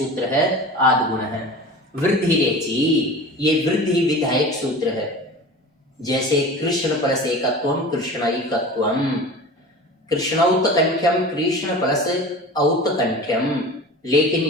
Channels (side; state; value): both; normal; correlation 0.36